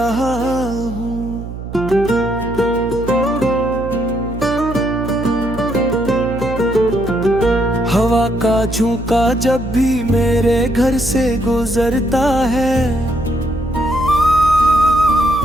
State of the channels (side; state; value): right; noise; hum, 10 dB below the sound